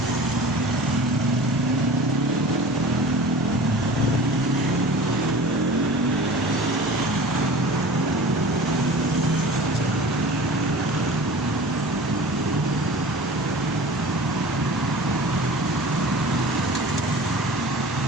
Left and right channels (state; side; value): normal; both; correlation 0.39